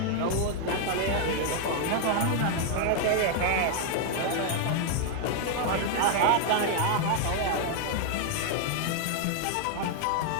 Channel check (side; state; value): both; different; correlation 0.00